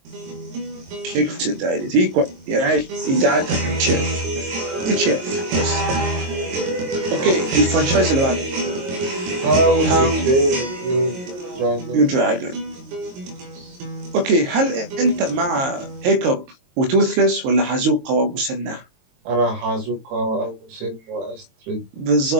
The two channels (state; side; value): late; left; 22 ms